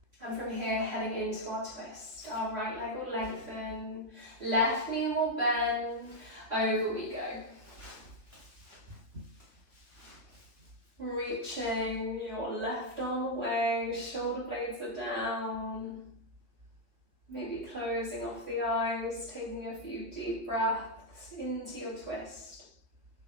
And from here, heading into our twist. Our right leg will lengthen, left knee will bend, over we go. Reaching your left arm away, shoulder blades are down. Maybe closing off the eyes, taking a few deep breaths into your twist.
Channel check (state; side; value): late; left; 3.2 ms